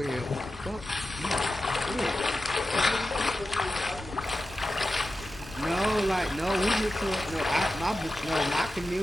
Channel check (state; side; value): normal; both; correlation 0.92